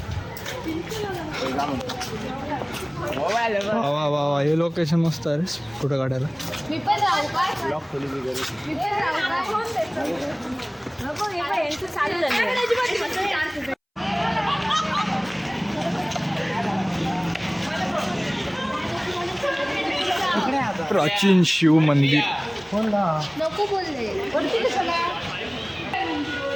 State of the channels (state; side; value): identical; both; correlation 1.00